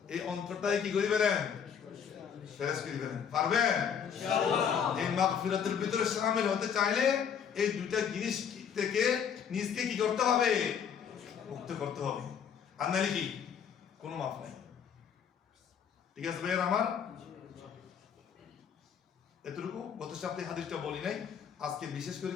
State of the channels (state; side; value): quieter; right; 7.7 dB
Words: এই অন্তরটাই কি করে ফেলেন? ফেরেশ করে ফেলেন। পারবেন ইনশাআল্লাহ? এই মাগফিরাতের ভিতরে শামিল হতে চাইলে এই দুইটা জিনিস থেকে নিজকে কি করতে হবে? মুক্ত করতে হবে। আর নাহলে কি কোনো মাফ নাই। ঠিক আছে ভাইয়া আমার? এতটুকু গত সপ্তাহে হাদিসটা বলি নাই, আজকে বিশেষ করে